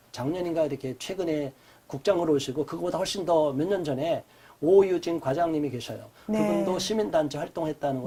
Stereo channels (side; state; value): both; identical; correlation 1.00